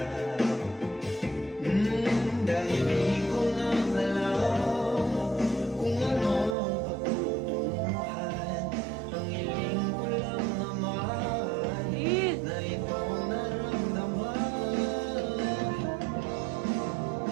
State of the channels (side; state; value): left; drops out; at 6.6 s